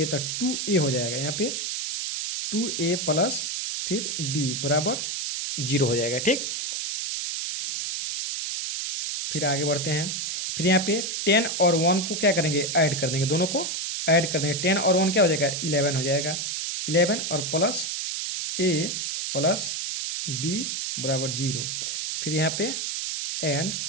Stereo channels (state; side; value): noise; right; hiss, 3 dB below the sound